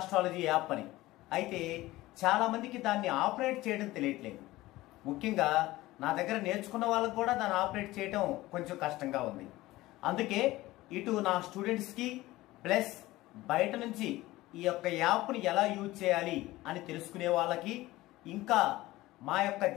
యాప్ అని. అయితే చాలా మందికి దాన్ని ఆపరేట్ చేయడం తెలియట్లేదు. ముఖ్యంగా నా దగ్గర నేర్చుకున్న వాళ్ళకు కూడా దాన్ని ఆపరేట్ చేయడం కొంచెం కష్టంగా ఉంది. అందుకే ఇటు నా స్టూడెంట్స్కి ప్లస్ బయట నుంచి ఈ యొక్క యాప్ని ఎలా యూజ్ చేయాలి అని తెలుసుకునే వాళ్ళకి, ఇంకా మా యొక్క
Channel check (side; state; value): right; quieter; 17.9 dB